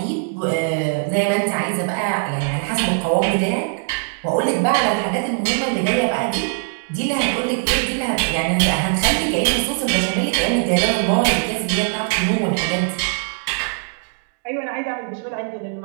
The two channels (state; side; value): silent; left; 65 dB below the other